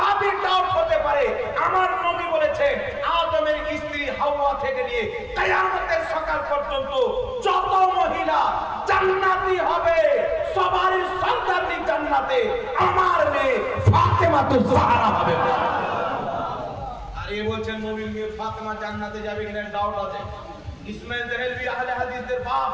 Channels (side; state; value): both; identical; correlation 1.00